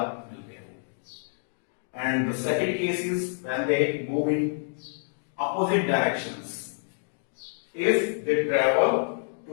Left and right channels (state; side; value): silent; right; digital silence